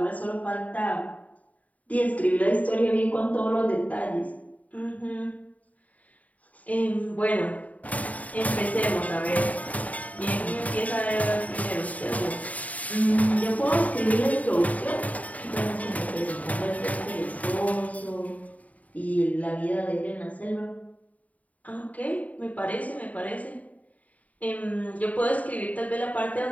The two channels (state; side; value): late; right; 0.071 ms